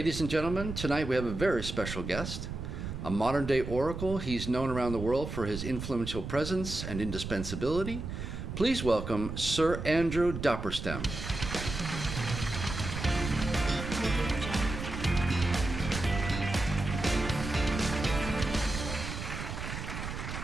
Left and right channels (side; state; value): right; noise; rumble, 6 dB below the sound